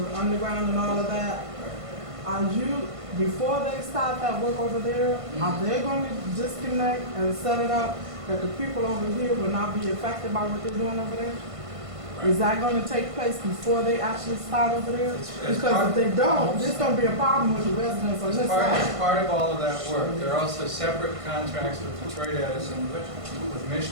underground and all of that, are you, before they start that work over there, are they going to disconnect and set it up that the people over here will not be affected by what they're doing over there? Right. Is that going to take place before they actually start over there? Because if they don't, there's going to be a problem with the residents on this side. As part of all of that work, there are also separate contracts with Detroit Edison, with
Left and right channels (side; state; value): left; late; 1.5 ms